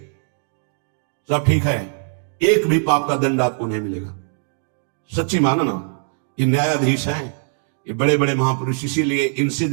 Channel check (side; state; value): left; silent; 62 dB below the other